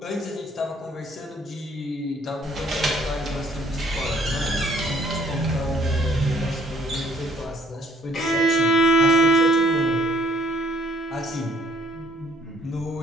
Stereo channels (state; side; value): normal; both; correlation 0.63